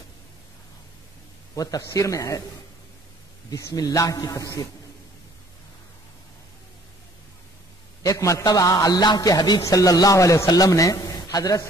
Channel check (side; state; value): both; normal; correlation 0.57